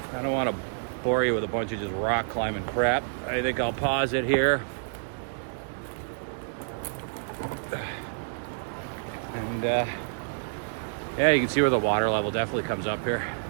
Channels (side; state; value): left; silent; digital silence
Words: I don't want to bore you with a bunch of just rock climbing crap. I think I'll pause it here. And yeah, you can see where the water level definitely comes up here.